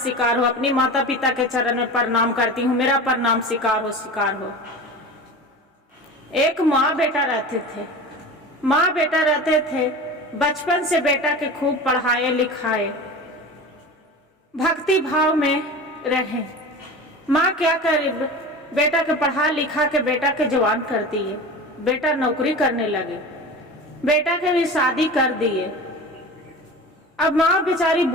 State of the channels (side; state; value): both; normal; correlation 0.33